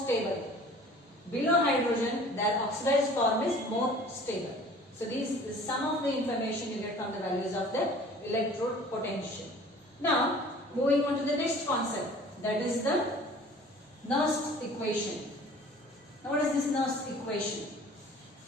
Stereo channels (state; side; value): normal; both; correlation 0.48